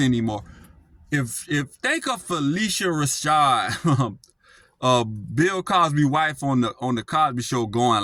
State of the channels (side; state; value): both; identical; correlation 1.00